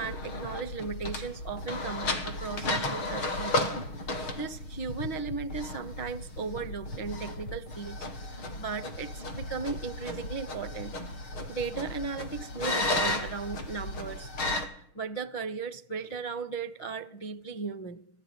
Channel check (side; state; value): right; late; 6.3 ms